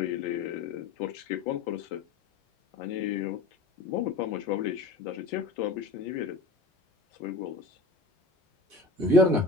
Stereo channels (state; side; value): quieter; right; 3.3 dB